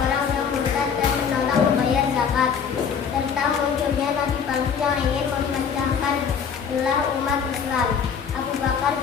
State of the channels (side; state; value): right; quieter; 6.8 dB